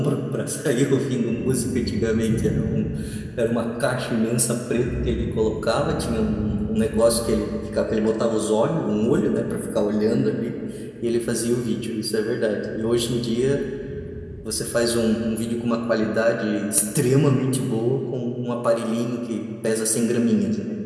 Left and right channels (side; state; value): both; identical; correlation 1.00